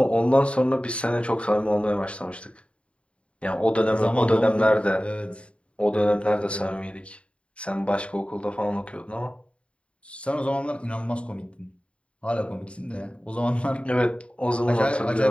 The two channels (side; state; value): right; late; 0.059 ms